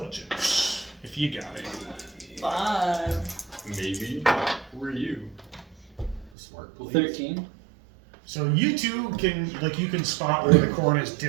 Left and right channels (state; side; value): drops out; left; at 6.3 s